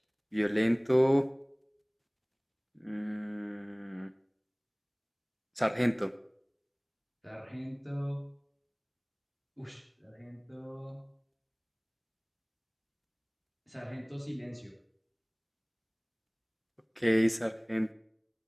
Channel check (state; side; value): identical; both; correlation 1.00